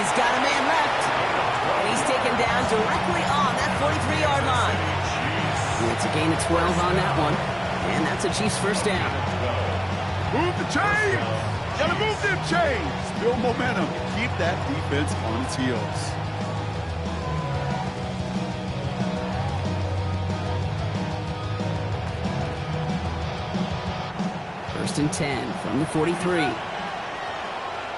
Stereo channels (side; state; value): both; identical; correlation 1.00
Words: got a man left. And he's taken down directly on that 43-yard line. And it's a gain of 12 on that one. And that's a Chiefs first down. Move the chains! Gotta move them chains! Build momentum. Keep that defense on its heels. First and 10 from the 43.